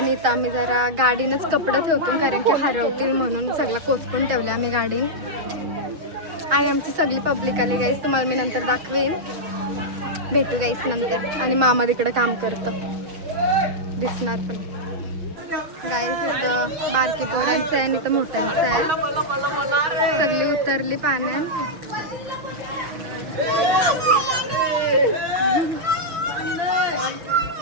इथं आम्ही जरा गाडीनंच कपडे ठेवतो कारण की हरवतील म्हणून सगळं कोचकून ठेवलं आम्ही गाडी. आणि आमची सगळी पब्लिक आली. गाईस तुम्हाला मी नंतर दाखवेन. भेटू गाईस नंतर. आणि मामा तिकडं काम करतं दिसणार पण. गाईस इथं बारकी पोरांचं आहे आणि इथं मोठ्यांचं आहे. सगळी उतरली पाण्यात.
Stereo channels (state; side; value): late; left; 6.2 ms